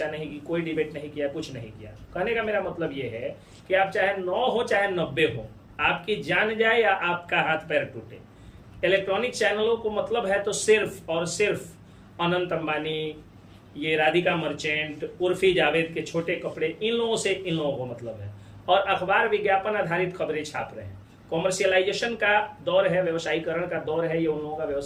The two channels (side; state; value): both; identical; correlation 1.00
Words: नहीं की, कोई डिबेट नहीं किया, कुछ नहीं किया। कहने का मेरा मतलब ये है कि आप चाहे 9 हो चाहे 90 हो, आपकी जान जाए या आपका हाथ पैर टूटे, इलेक्ट्रॉनिक चैनलों को मतलब है तो सिर्फ और सिर्फ अनंत अंबानी, ये राधिका मर्चेंट, उर्फी जावेद के छोटे कपड़े, इन लोगों से इन लोगों को मतलब है। और अखबार विज्ञापन आधारित खबरें छाप रहे हैं। कॉमर्शियलाइजेशन का दौर है, व्यवसायीकरण का दौर है, ये उन लोगों का